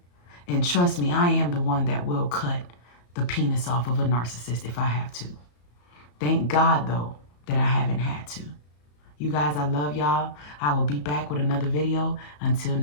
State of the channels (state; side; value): late; right; 34 ms